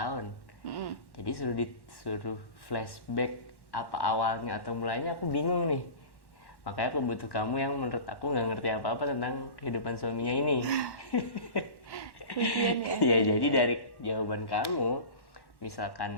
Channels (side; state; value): right; late; 1.1 ms